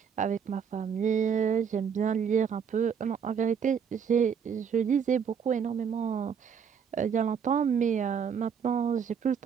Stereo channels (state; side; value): quieter; left; 7.1 dB